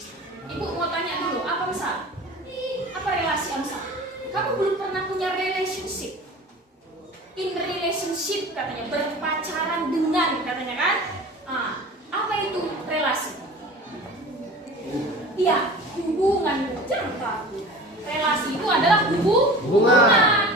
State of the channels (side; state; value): both; normal; correlation 0.38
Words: Ibu mau tanya dulu, apa misal? Apa relasi Amsal? Kamu belum pernah punya relationship. In relationship katanya, berpacaran dengan katanya kan? Apa itu relasi? Iya, hubungan. Jangan takut. Relasi itu adalah hubungan.